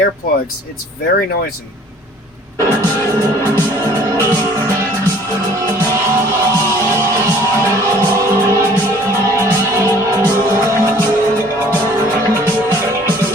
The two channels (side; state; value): both; normal; correlation 0.54